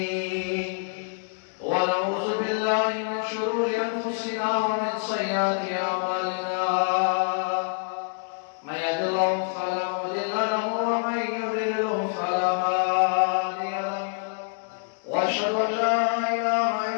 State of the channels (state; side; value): silent; right; digital silence